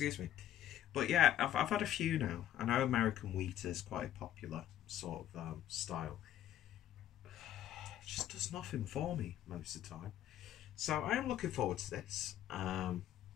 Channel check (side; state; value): right; quieter; 11.8 dB